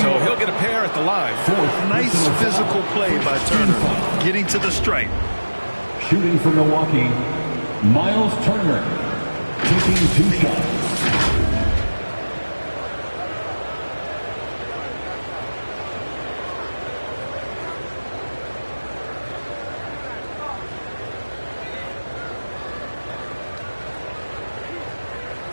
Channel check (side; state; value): both; inverted; correlation -1.00